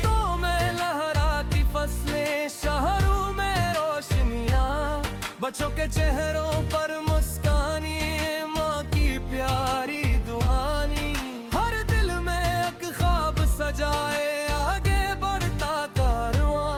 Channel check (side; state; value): both; identical; correlation 1.00